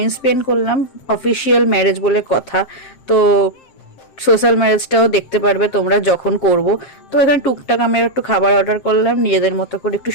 স্পেন্ড করলাম, অফিসিয়াল ম্যারেজ বলে কথা। তো সোশ্যাল ম্যারেজটাও দেখতে পারবে তোমরা যখন করব। তো এখানে টুকটাক আমি একটু খাবার অর্ডার করলাম, নিজেদের মতো করে একটু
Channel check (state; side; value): late; right; 7.6 ms